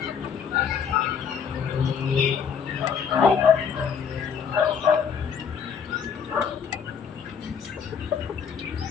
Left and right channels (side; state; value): right; quieter; 6.9 dB